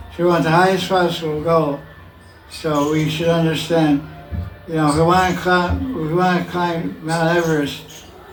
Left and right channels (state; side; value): identical; both; correlation 1.00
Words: So we want the highest possible goal. So we should understand, if we want to climb Mount Everest,